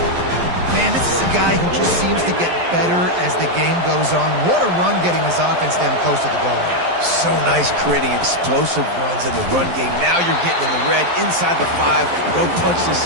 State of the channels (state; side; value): late; left; 12 ms